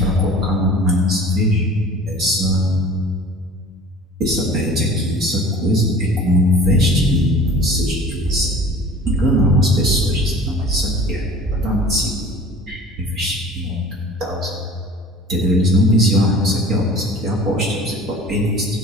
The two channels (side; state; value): both; normal; correlation 0.44